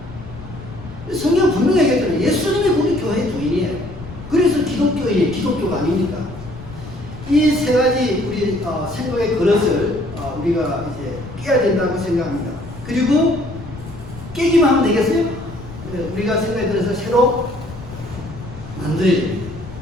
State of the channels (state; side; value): noise; left; rumble, 14 dB below the sound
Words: 성경 분명히 얘기했잖아요. 예수님이 우리 교회의 주인이에요. 그래서 기독교인이 기독교가 아닙니까? 이 세 가지 우리 생각의 그릇을 우리가 이제 깨야 된다고 생각합니다. 그리고 깨기만 하면 되겠어요? 우리가 생각의 그릇을 새로 만들어야 됩니다.